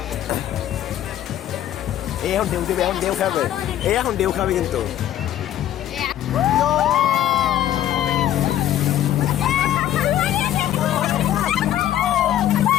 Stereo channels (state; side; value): quieter; right; 12.0 dB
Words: এই এখন ঢেউ দেবে, এখন ঢেউ খাবে, এখন ঢেউ খাবে কিন্তু।